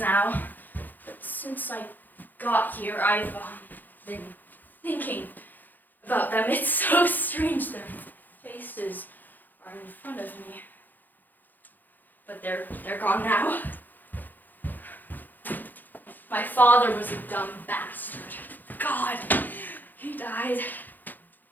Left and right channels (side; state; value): right; late; 0.086 ms